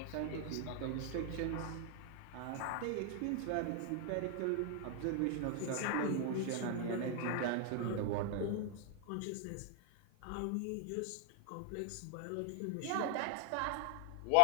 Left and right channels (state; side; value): different; both; correlation 0.00